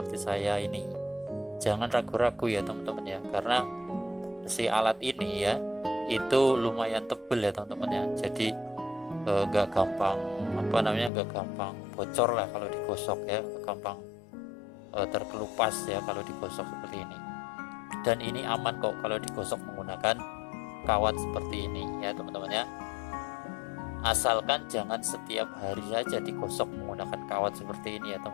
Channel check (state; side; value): drops out; right; at 11.1 s